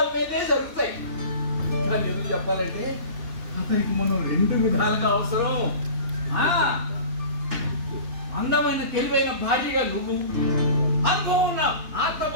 మీదే జరుగుతాయి. కానీ ఎందుకు చెప్పాలంటే అతనికి మనం 2 విధాలుగా అవసరం. అందమైన తెలివైన భార్యగా నువ్వు, అనుభవం ఉన్న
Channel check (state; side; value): late; left; 2.9 ms